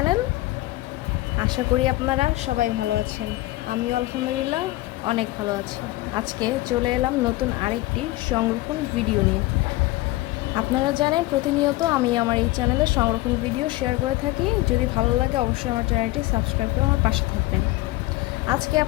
আশা করি আপনারা সবাই ভালো আছেন। আমিও আলহামদুলিল্লাহ অনেক ভালো আছি। আজকে চলে এলাম নতুন আরেকটি সংরক্ষণ ভিডিও নিয়ে। আপনারা জানেন প্রতিনিয়ত আমি আমার এই চ্যানেলে সংরক্ষণ ভিডিও শেয়ার করে থাকি। যদি ভালো লাগে অবশ্যই আমার চ্যানেলটি সাবস্ক্রাইব করে আমার পাশে থাকবেন। আজকে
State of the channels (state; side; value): quieter; right; 18.6 dB